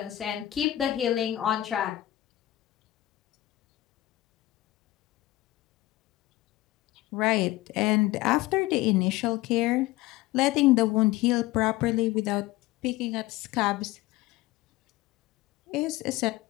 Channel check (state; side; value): quieter; right; 16.5 dB